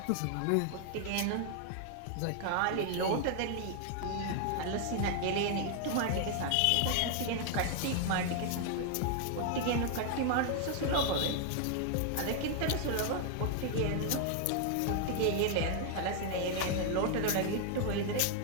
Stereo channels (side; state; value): both; different; correlation 0.00